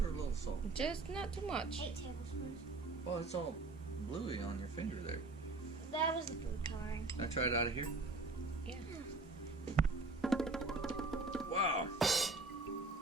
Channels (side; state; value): left; quieter; 3.3 dB